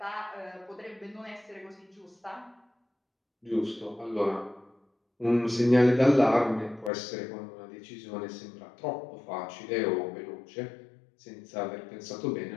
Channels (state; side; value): drops out; right; at 6.9 s